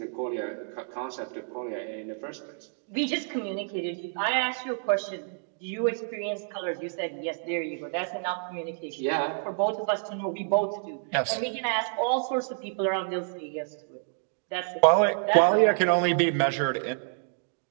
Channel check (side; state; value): left; silent; digital silence